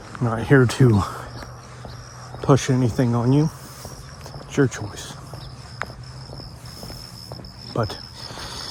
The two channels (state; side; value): identical; both; correlation 1.00